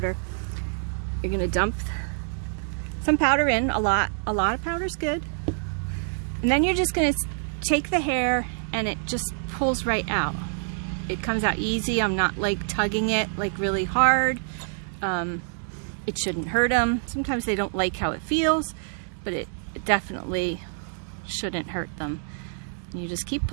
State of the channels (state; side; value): silent; left; 61 dB below the other